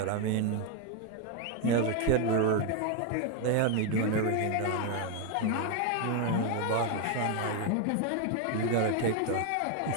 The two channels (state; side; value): different; both; correlation 0.01